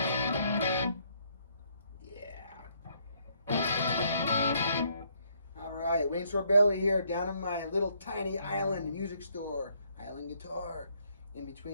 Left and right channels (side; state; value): both; inverted; correlation -0.69